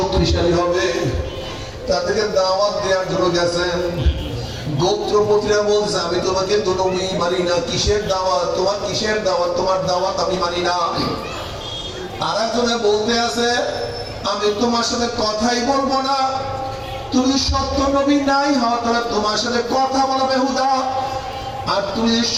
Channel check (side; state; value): both; identical; correlation 1.00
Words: হবে। তাদেরকে দাওয়াত দেওয়ার জন্য গেছেন। গোত্রপতিরা বলছে, আমি তোমাকে তো নবী মানি না, কিসের দাওয়াত তোমার, কিসের দাওয়াত তোমার, দাওয়াত আমি মানি না। আর একজনে বলতে আছে, আমি তোমার সাথে কথাই বলবো না, তুমি সত্য নবী নাই হও, তাহলে তোমার সাথে কথা বলা বেহুদা। আর তুমি যদি